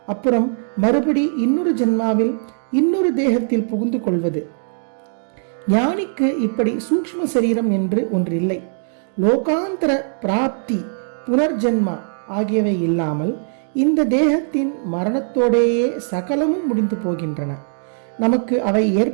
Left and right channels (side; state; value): left; silent; digital silence